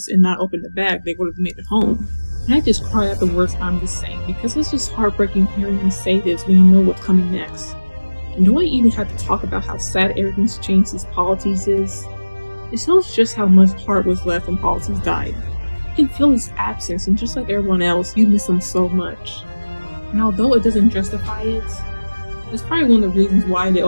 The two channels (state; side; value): inverted; both; correlation -1.00